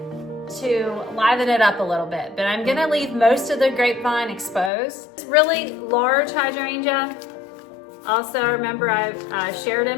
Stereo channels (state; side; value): drops out; right; at 4.7 s